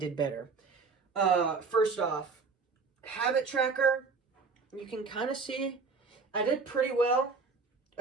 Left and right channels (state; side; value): quieter; left; 4.6 dB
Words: better. First off, habit tracker, you can kind of see I did pretty well.